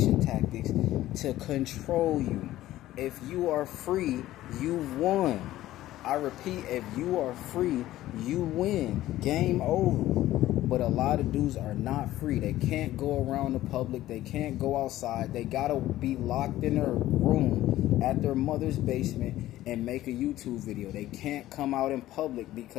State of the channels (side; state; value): right; quieter; 14.8 dB